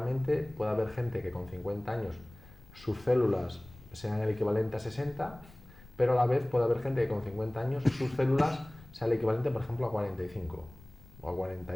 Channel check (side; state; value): left; noise; rumble, 22 dB below the sound